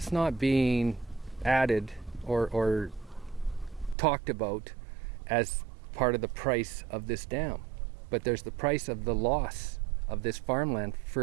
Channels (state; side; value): drops out; left; at 4.0 s